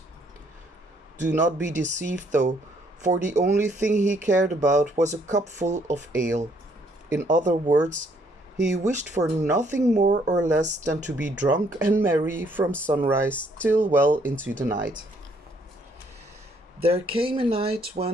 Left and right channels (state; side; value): normal; both; correlation 0.67